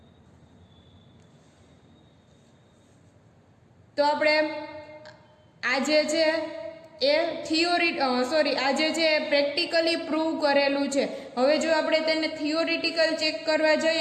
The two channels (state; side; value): identical; both; correlation 1.00